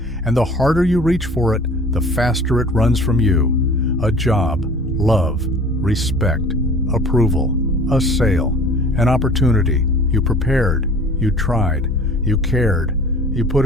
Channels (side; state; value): both; normal; correlation 0.46